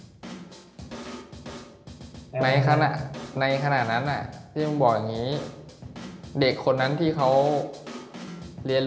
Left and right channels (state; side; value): identical; both; correlation 1.00